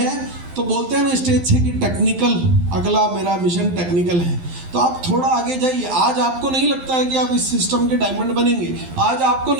तो बोलते हैं ना स्टेज से कि टेक्निकल, अगला मेरा मिशन टेक्निकल है। तो आप थोड़ा आगे जाइए। आज आपको नहीं लगता है कि आप इस सिस्टम के डायमंड बनेंगे, आज आपको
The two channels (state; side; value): late; left; 12 ms